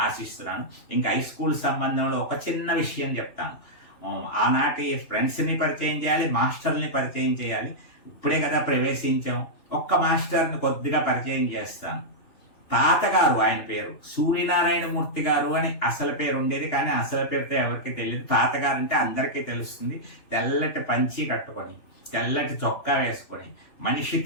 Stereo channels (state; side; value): late; right; 3.0 ms